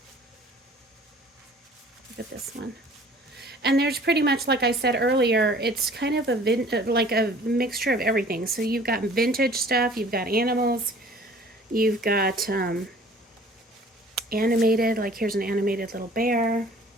Look at this one. And there's pretty much, like I said earlier, it's kind of like a mixture of everything. So you've got vintage stuff, you've got animals, you've got animated, like here's an animated little bear.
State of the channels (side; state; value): both; normal; correlation 0.50